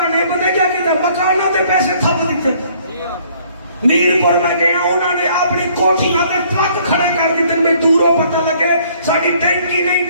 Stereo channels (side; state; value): both; inverted; correlation -0.61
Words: پتہ کیا کہتے مکانوں تے پیسے تھپ دیتے میرپور میں گیا انہوں نے اپنی کوٹھیاں پہ ٹرک کھڑے کر دیتے میں دوروں پتہ لگے ساڑی ٹینکی نہیں